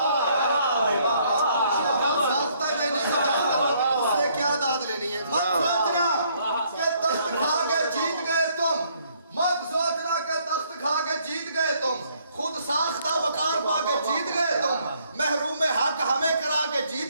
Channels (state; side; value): inverted; both; correlation -0.66